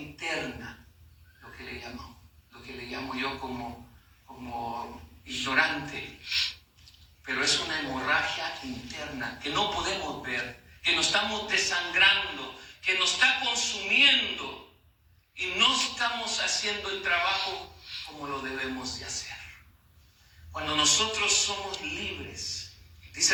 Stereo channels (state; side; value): identical; both; correlation 1.00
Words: lo que le llamo yo como ignorante, pero es una hemorragia interna que no podemos ver, que nos estamos desangrando, que nos está consumiendo y no estamos haciendo el trabajo como lo debemos de hacer. Cuando nosotros somos libres,